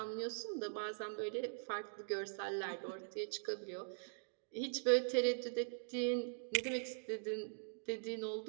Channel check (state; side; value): silent; left; digital silence